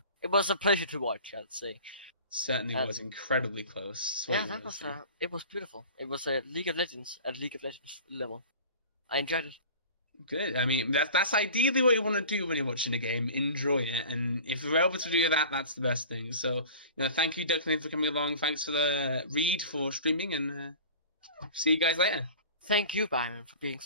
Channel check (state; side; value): inverted; both; correlation -0.41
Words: It was a pleasure to watch, I'd say. Certainly was incredibly close. It was beautiful. It was a League of Legends at League of Legends level. I enjoyed it. Good. I mean, that's ideally what you want to do when you're watching a game. Enjoy it, and if you're able to do that, that's the best thing. So, thank you, Declan, for coming along. Thanks for the Reed for streaming, and see you guys later. Thank you, Byron, for being